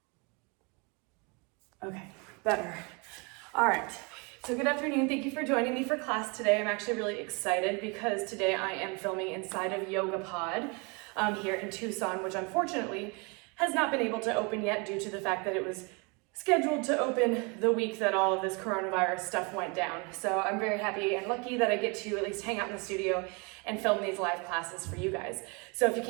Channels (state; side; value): quieter; left; 30.9 dB